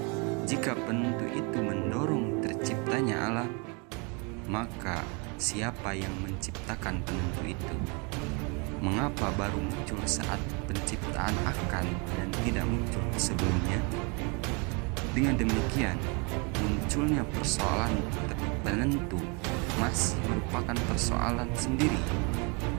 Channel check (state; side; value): quieter; left; 31.7 dB